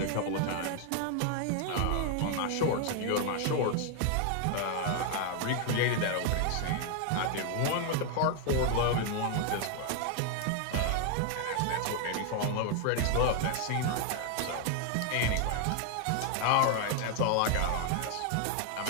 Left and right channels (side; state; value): both; different; correlation 0.00